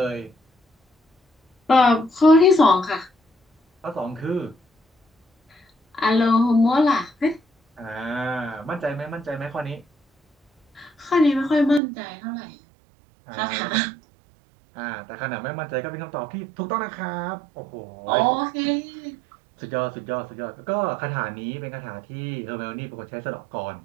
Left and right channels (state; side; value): drops out; left; at 11.8 s